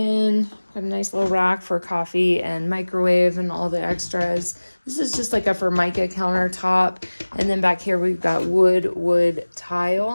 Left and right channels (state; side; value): inverted; both; correlation -1.00